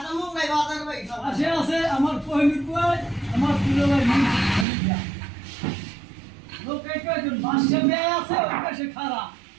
মুঙ্গাই বাজার ভাই আছে আছে আমার পহিমির বুয়াই আমার পুরো ভাই লোক একজন বাসে বেয়ে আছে ওর কাছে খারাপ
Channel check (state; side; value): drops out; left; at 4.7 s